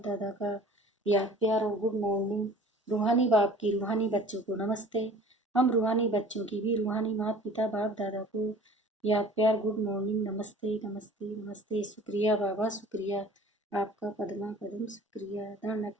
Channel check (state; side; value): normal; both; correlation 0.46